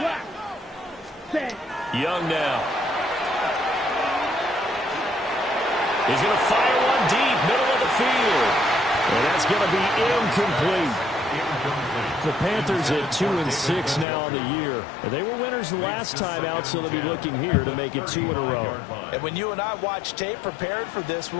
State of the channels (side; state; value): right; drops out; at 14.1 s